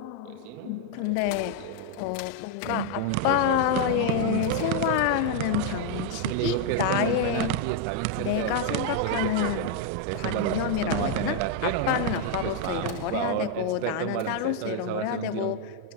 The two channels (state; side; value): different; both; correlation 0.00